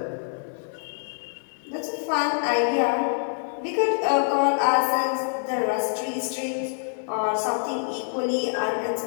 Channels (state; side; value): silent; right; digital silence